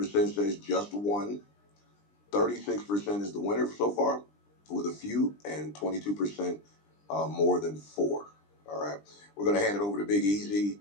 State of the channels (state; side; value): late; right; 20 ms